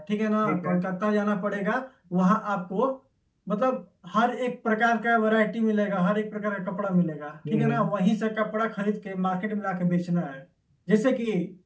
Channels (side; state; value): both; identical; correlation 1.00